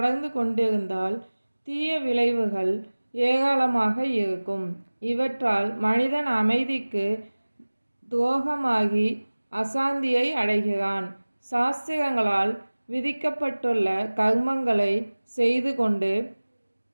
கொண்டிருந்தால் தீய விளைவுகள் ஏராளமாக இருக்கும். இவற்றால் மனிதன் அமைதிக்கு துரோகமாகி அசாந்தியை அடைகிறான். சாஸ்திரங்களால் விதிக்கப்பட்டுள்ள கர்மங்களை செய்து கொண்டு,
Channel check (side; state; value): both; inverted; correlation -1.00